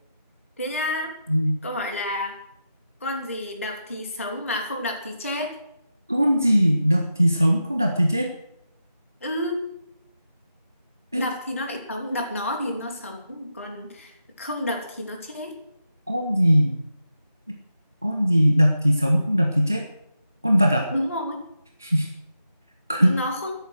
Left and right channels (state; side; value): inverted; both; correlation -0.88